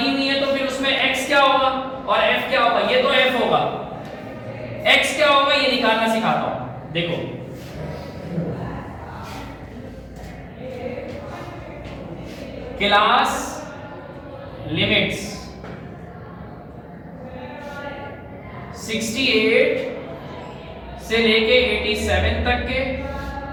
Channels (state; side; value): identical; both; correlation 1.00